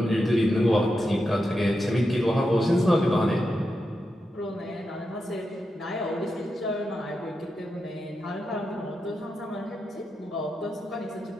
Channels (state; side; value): normal; both; correlation 0.87